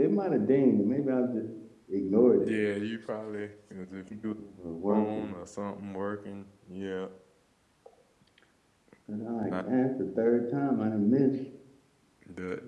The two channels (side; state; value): both; identical; correlation 1.00